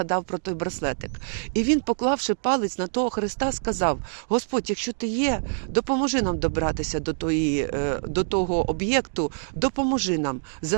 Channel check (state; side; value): silent; left; digital silence